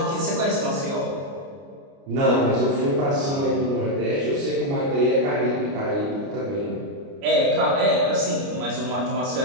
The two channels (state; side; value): late; left; 29 ms